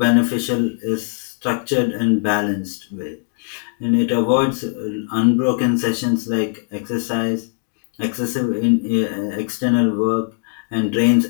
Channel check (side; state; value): right; silent; 59 dB below the other